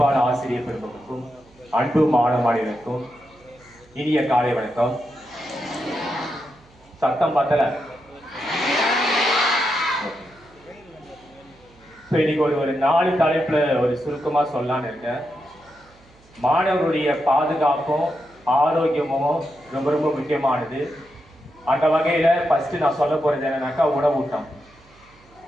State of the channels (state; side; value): noise; right; hum, 28 dB below the sound